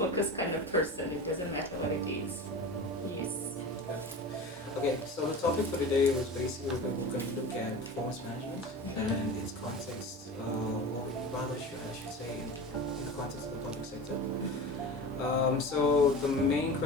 kind of person. It doesn't matter what it is. Yes. Okay, so the topic for today was basically we're going to look at performance management and its context, or rather I should say in the context of the public sector. So the main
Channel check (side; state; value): both; normal; correlation 0.32